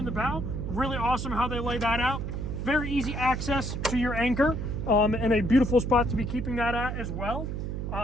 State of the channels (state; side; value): noise; right; hum, 4 dB below the sound